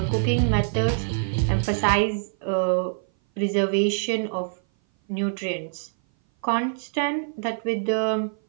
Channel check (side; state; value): left; silent; 57 dB below the other